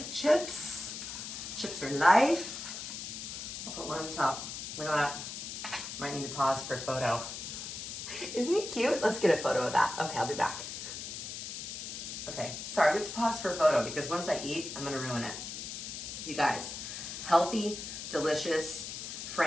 chips. Chips are life. I'll put one on the top. Look at that. Might need to pause for a photo. Isn't he cute? Let's get a photo of that. Okay, I'll be back. Okay, sorry, we have to pause for a photo because once I eat, I'm gonna ruin it. You guys, healthy, delicious,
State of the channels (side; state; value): left; noise; hiss, 7 dB below the sound